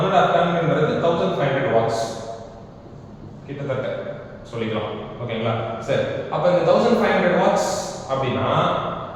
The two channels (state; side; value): identical; both; correlation 1.00